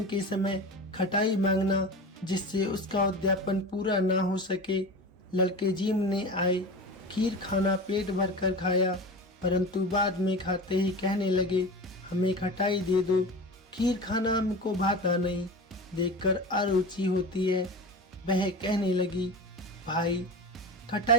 के समय खटाई मांगना, जिससे उसका उद्यापन पूरा ना हो सके। लड़के जीमने आए, खीर खाना पेट भर कर खाया, परंतु बाद में खाते ही कहने लगे, हमें खटाई दे दो, खीर खाना हमको भाता नहीं, देखकर अरुचि होती है। वह कहने लगी, भाई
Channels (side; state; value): both; normal; correlation 0.30